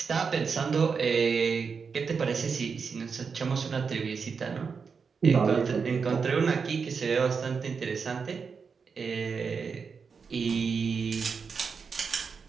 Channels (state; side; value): quieter; left; 5.6 dB